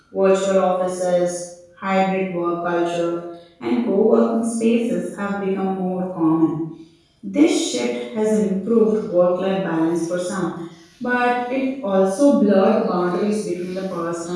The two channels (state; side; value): identical; both; correlation 1.00